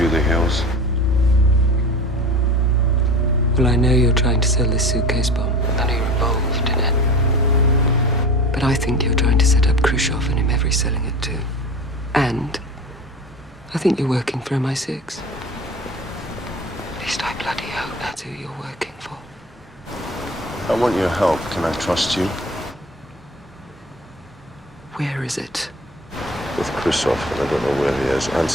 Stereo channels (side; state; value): both; normal; correlation 0.35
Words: Hills? Well, I know you're trying to sell this suitcase bomb. I know you're involved in it. But I think you're trying to set up Khrushchev and him selling it too. And I think you're working for MI6. At least I bloody hope that's who you're working for. I want your help. Can I trust you? Where is it? With Khrushchev, and I don't know where he is.